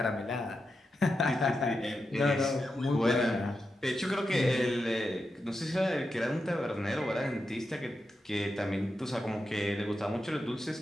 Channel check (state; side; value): normal; both; correlation 0.88